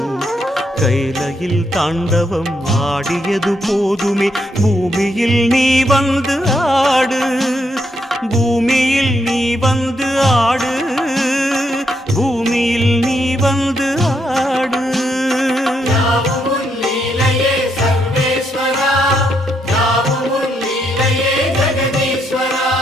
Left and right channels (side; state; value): both; normal; correlation 0.77